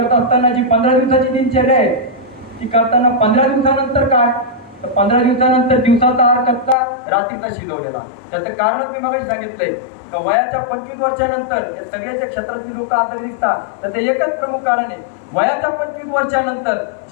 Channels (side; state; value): right; drops out; at 6.8 s